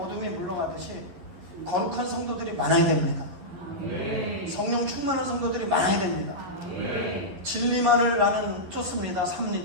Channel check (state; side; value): late; left; 12 ms